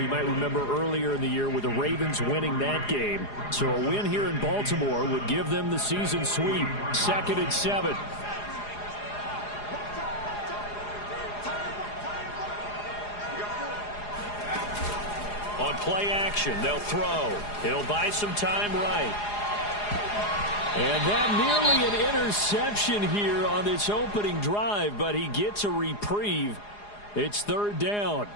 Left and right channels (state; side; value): late; right; 4.8 ms